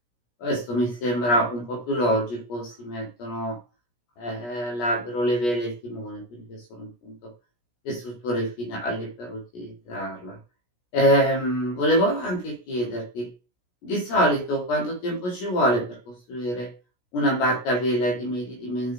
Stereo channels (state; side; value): late; right; 17 ms